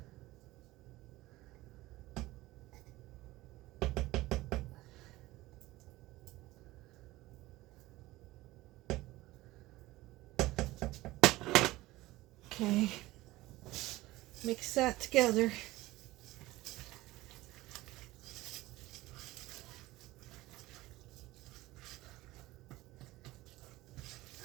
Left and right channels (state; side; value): quieter; left; 18.4 dB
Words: Okay, mix that together.